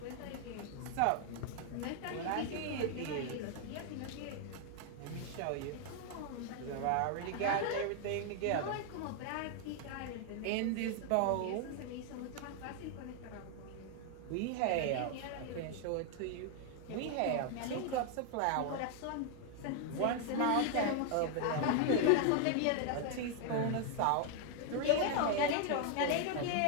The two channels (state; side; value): different; both; correlation 0.00